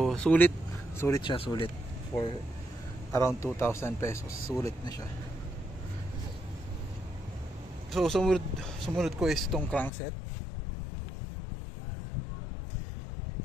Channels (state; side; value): drops out; right; at 9.9 s